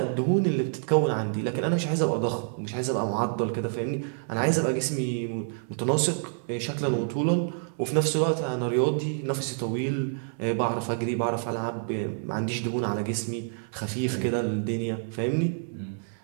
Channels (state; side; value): silent; left; digital silence